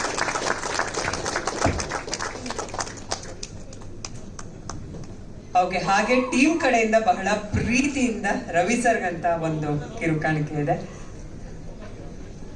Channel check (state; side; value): identical; both; correlation 1.00